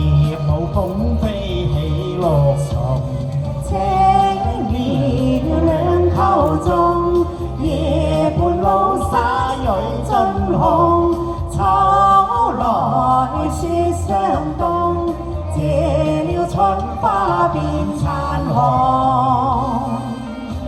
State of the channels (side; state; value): both; identical; correlation 1.00